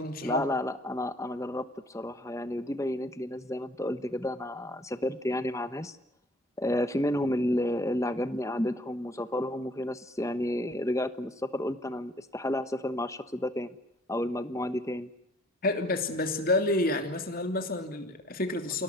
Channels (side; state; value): both; normal; correlation 0.58